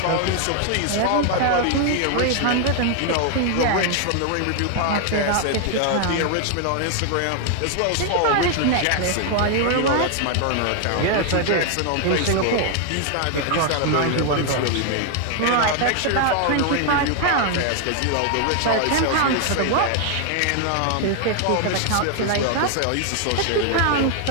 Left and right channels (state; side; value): different; both; correlation 0.00